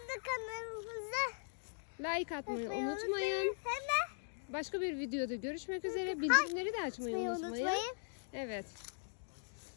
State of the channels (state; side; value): silent; right; digital silence